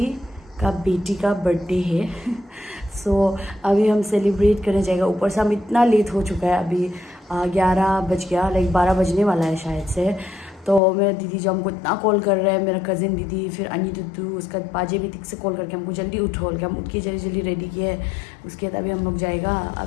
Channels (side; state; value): right; drops out; at 10.8 s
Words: का बेटी का बर्थडे है। अभी हम सेलिब्रेट करने जाएगा। ऊपर से हम इतना लेट हो चुका है, अभी 11 बज गया, लाइक 12 बजने वाला है शायद से। तो मेरा दीदी जो हमको इतना कॉल कर रहा है, मेरा कज़िन दीदी, फिर अनी दुद्दू, उसका पाजे भी तिक से कॉल करके हमको जल्दी उठो, हम उठ के जल्दी जल्दी रेडी किए। उसके बाद अभी हम लोग जाएगा।